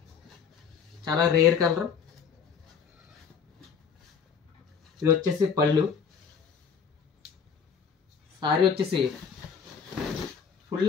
చాలా రేర్ కలర్. ఇది వచ్చేసి పళ్ళు. సారీ వచ్చేసి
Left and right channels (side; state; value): right; quieter; 6.6 dB